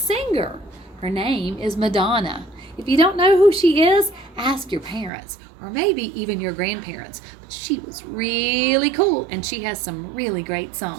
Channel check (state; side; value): drops out; left; at 5.1 s